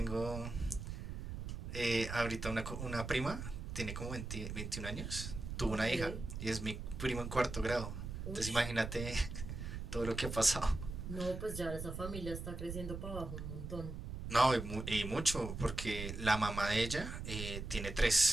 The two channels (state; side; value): noise; right; rumble, 6 dB below the sound